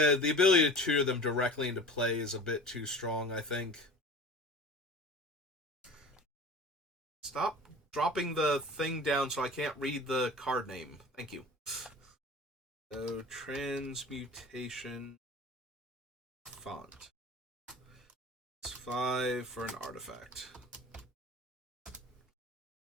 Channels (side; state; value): both; normal; correlation 0.39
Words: the ability to tutor them directly into play is a bit too strong, I think. Stop dropping the thing down so I can't read the card name. Thank you. So, transmutation font. It's 5 for an artifact.